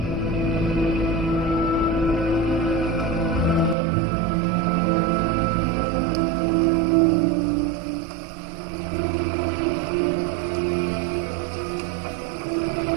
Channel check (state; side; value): drops out; left; at 3.8 s